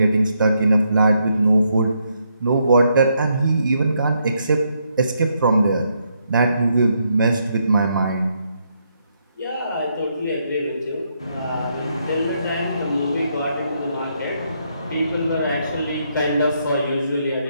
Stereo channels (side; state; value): both; inverted; correlation -0.77